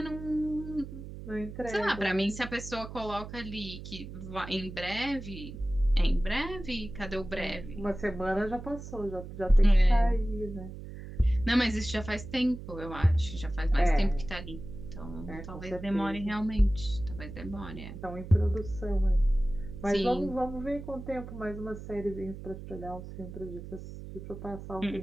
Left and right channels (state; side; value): noise; right; hum, 11 dB below the sound